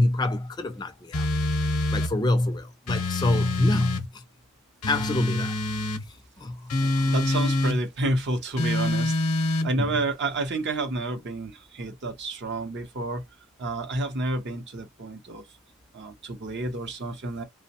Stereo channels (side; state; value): both; normal; correlation 0.69